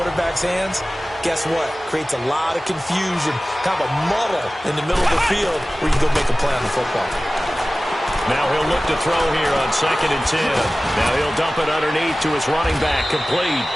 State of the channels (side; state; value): both; normal; correlation 0.97